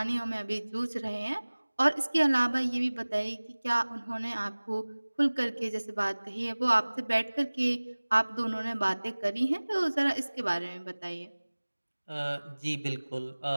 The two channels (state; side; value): inverted; both; correlation -1.00